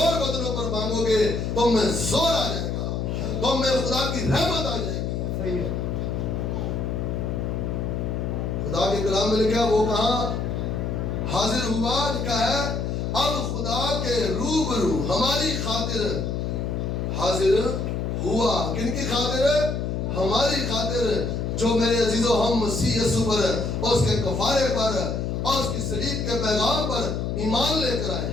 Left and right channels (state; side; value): noise; left; hum, 1 dB below the sound